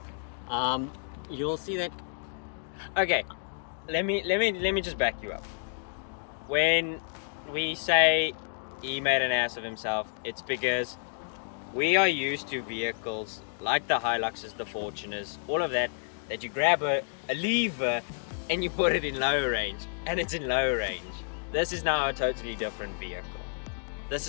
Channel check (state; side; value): silent; right; digital silence